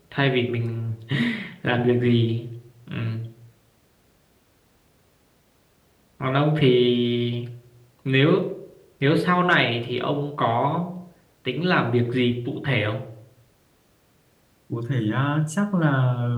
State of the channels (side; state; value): both; identical; correlation 1.00